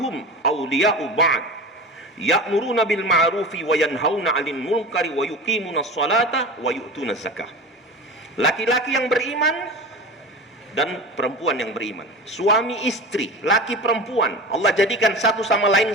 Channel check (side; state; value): both; normal; correlation 0.31